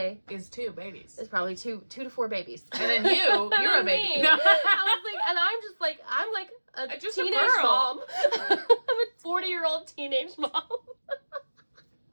is 2 babies. Is probably 2 to 4 babies. And then you're a baby. I was like, and I'm like a just teenage a girl. mom. I'm a 40-year-old teenage mom.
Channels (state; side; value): inverted; both; correlation -1.00